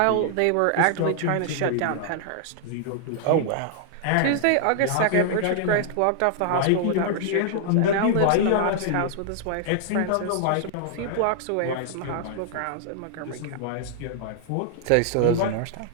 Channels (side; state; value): both; different; correlation -0.01